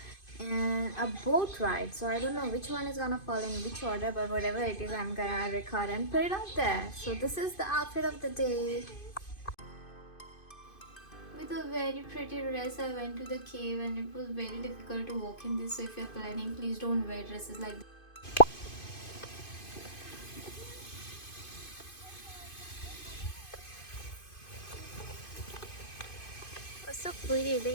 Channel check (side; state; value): right; late; 2.5 ms